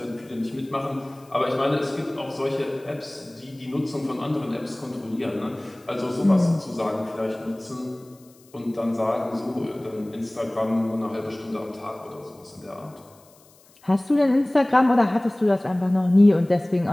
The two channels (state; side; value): noise; left; hiss, 29 dB below the sound